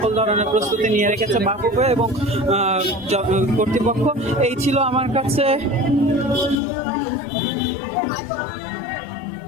ধরনের প্রস্তুতি নিয়ে রেখেছে বাফুফে এবং কর্তৃপক্ষ। এই ছিল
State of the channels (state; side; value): drops out; right; at 6.6 s